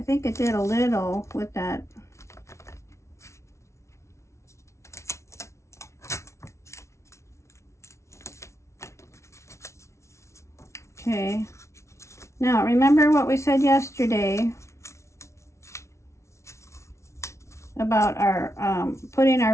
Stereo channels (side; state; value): right; late; 0.13 ms